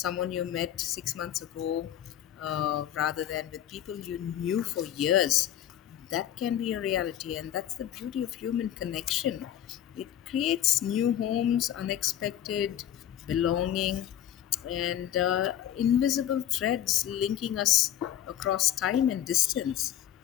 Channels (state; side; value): quieter; right; 11.1 dB